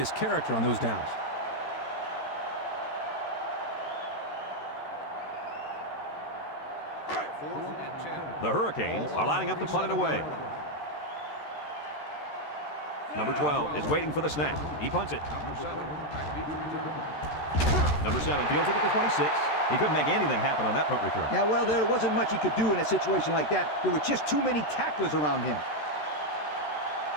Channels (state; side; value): late; right; 13 ms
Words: character on those downs. Fourth and 10. The Hurricanes are lining up to punt it away. Number 12 is waiting for the snap. He punts it. Number 7, back deep to return. Number 7 fields it at the 26. He couldn't make anything happen on that punt return. Yeah, well, there wasn't much he could do in a situation like that. There were just too many tacklers around him.